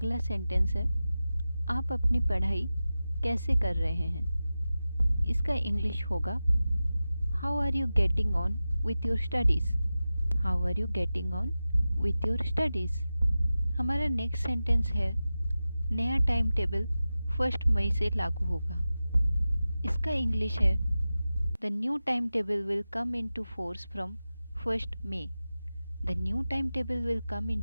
सेंटेंस है, आप अपनी पढ़ाई कैसे कर रहे हैं। इसका इंग्लिश होगा, how are you getting on with your studies. How are you getting on with your studies. हमारा नेक्स्ट सेंटेंस है, नया टाइम टेबल 1 मई से लागू होगा। इसका इंग्लिश है, the new time table will come into force from 1 May. The new time table will come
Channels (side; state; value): both; inverted; correlation -0.95